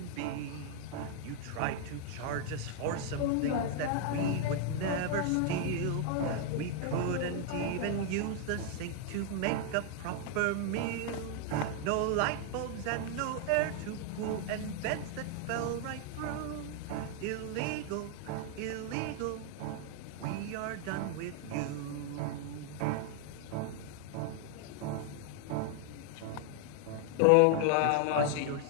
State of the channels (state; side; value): different; both; correlation 0.00